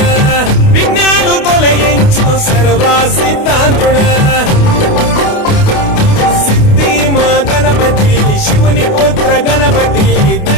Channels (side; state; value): right; late; 28 ms